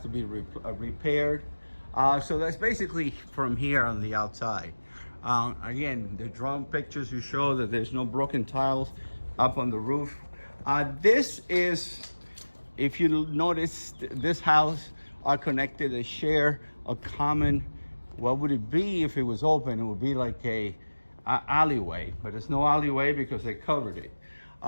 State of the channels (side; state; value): both; inverted; correlation -1.00